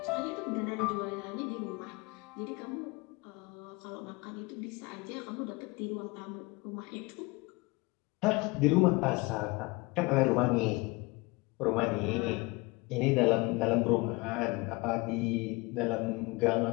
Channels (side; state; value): right; quieter; 24.9 dB